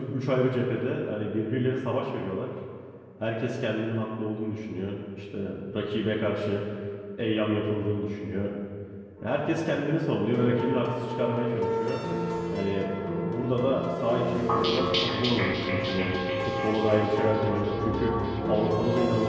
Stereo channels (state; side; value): identical; both; correlation 1.00